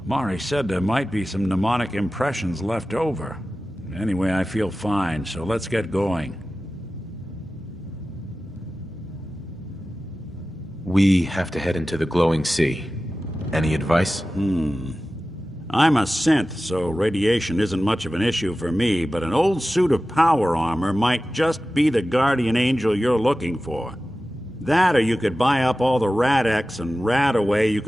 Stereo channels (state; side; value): normal; both; correlation 0.95